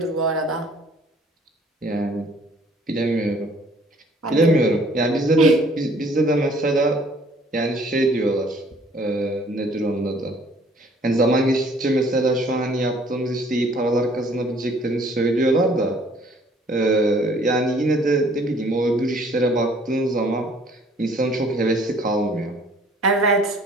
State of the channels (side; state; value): both; normal; correlation 0.58